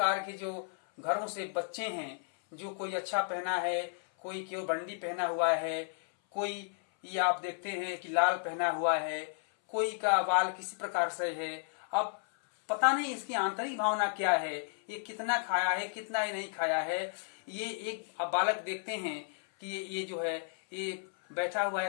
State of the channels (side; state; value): right; silent; 56 dB below the other